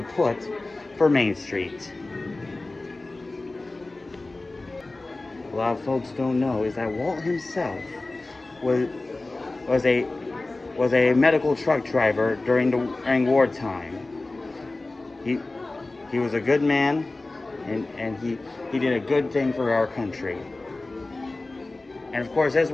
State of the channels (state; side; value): quieter; right; 3.1 dB